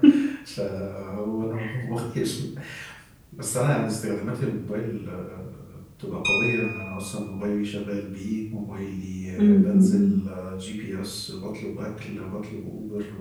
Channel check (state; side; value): identical; both; correlation 1.00